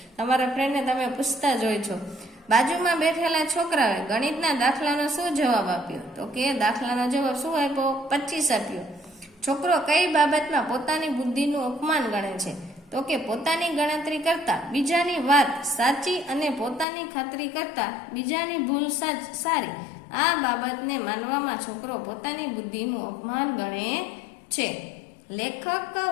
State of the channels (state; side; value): drops out; right; at 16.9 s